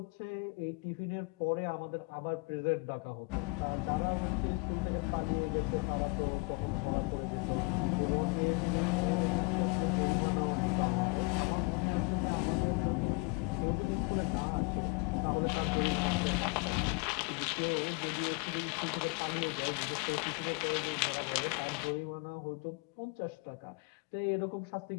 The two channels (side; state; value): right; quieter; 28.3 dB